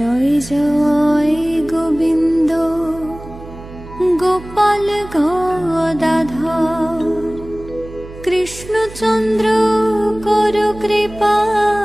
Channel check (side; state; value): right; noise; hum, 15 dB below the sound